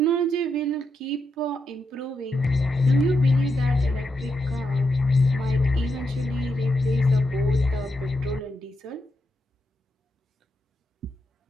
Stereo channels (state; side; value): normal; both; correlation 0.83